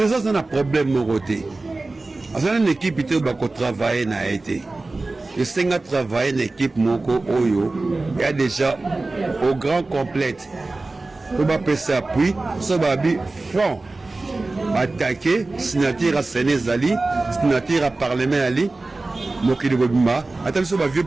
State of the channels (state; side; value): quieter; left; 3.3 dB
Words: c'est un problème moroté c'est une équipe qui va travailler na été et c'est un travail une équipe moko oyo il y a déjà au grand complète pour ba passer appui ça va bi front attaquer signature à Sénézali signature à parlement ali mokili bobima attention ba vieux